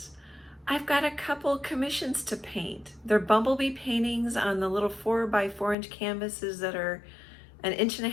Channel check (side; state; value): right; drops out; at 5.8 s